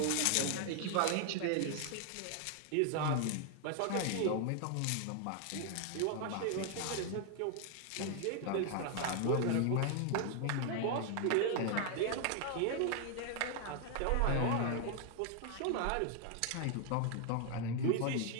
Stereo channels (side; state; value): both; different; correlation 0.00